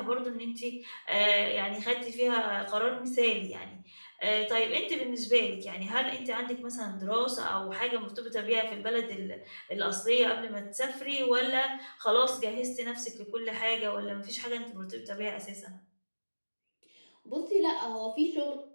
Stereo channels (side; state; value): both; inverted; correlation -1.00